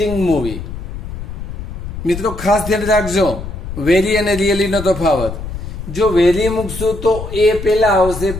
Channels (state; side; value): noise; left; rumble, 8 dB below the sound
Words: movie. મિત્રો ખાસ ધ્યાન રાખજો વેરી અને રિયલી નો તફાવત. જો વેરી મૂકશું તો એ પહેલા આવશે